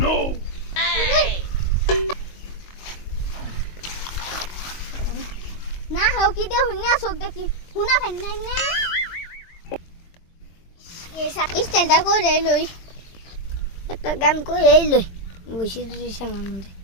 না হাও কি দে হুইনা sok দেখি হুনা ফাইন না না এসা স্ট্যান্ডটা করে লই একটা গান করে লই বসে দিছেন মধ্যে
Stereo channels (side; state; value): right; late; 22 ms